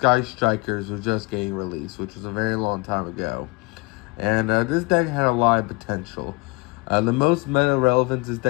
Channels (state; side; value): quieter; right; 27.5 dB